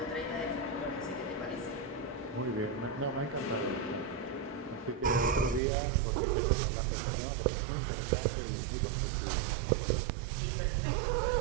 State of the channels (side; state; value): left; drops out; at 5.6 s